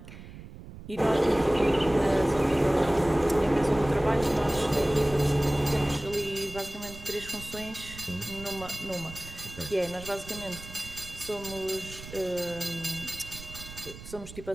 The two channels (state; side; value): noise; right; rumble, 14 dB below the sound